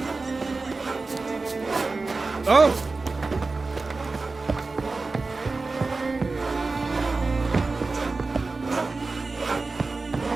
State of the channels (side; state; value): left; quieter; 3.8 dB